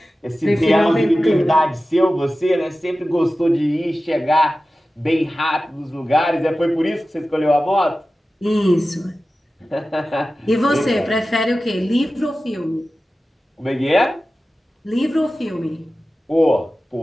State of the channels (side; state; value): both; normal; correlation 0.95